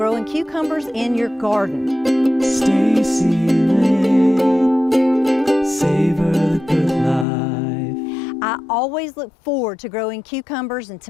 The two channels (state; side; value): drops out; right; at 7.2 s